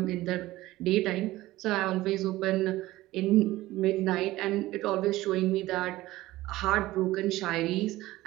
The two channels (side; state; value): left; quieter; 17.2 dB